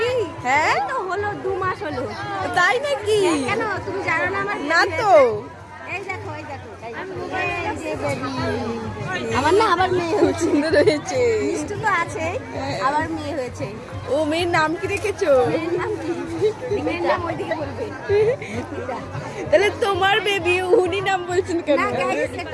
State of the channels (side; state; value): both; identical; correlation 1.00